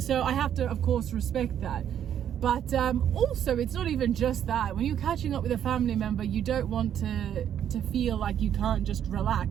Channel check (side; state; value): left; quieter; 9.7 dB